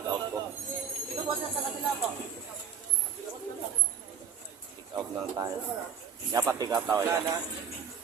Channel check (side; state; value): left; quieter; 7.3 dB